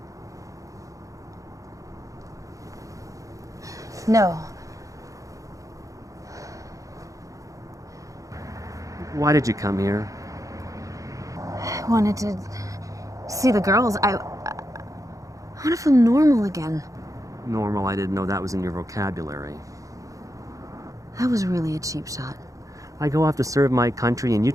No. Why did you come here? I wanted to see the girls. I want to feel normal again. Normal, I didn't know that was in your vocabulary. That was really a cheap shot. I go off to serve my country, and you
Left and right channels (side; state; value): left; late; 0.16 ms